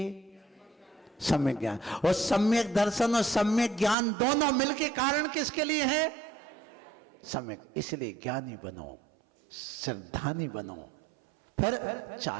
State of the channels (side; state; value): left; drops out; at 4.0 s